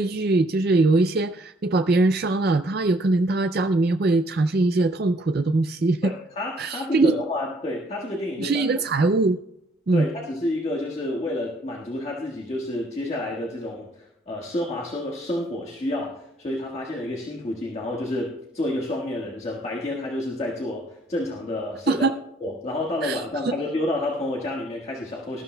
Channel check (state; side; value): normal; both; correlation 0.64